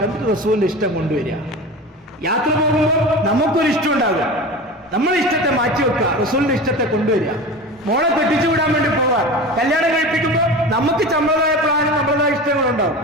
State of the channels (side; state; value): both; normal; correlation 0.31